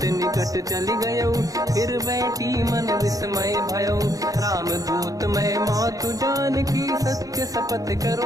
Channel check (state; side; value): late; left; 0.17 ms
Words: निकट चली गयो फिर बैठी मन विस्मय भयो राम दूत मैं मातु जान की सत्य शपथ